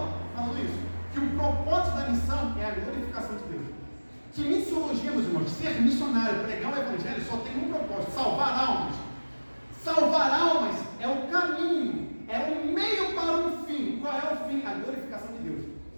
falando isso, que o propósito da missão é a glorificação de Deus. Que missiologia, meus irmãos, ser missionário, pregar o evangelho, só tem um propósito: salvar almas. Salvar almas é o caminho, é o meio para um fim. Qual é o fim? A glorificação de Deus.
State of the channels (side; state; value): both; inverted; correlation -1.00